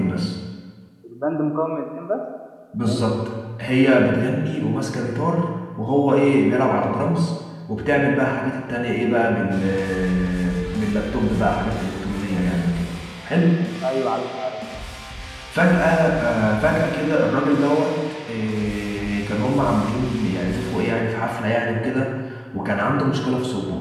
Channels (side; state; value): both; identical; correlation 1.00